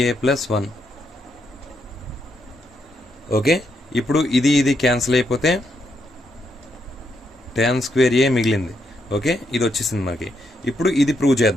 a + 1. Okay, ఇప్పుడు ఇది క్యాన్సిల్ అయిపోతే tan square a మిగిలింది. ఓకే, ఇది వచ్చేసింది మనకి. ఇప్పుడు ఇది ప్రూవ్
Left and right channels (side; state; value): both; normal; correlation 0.79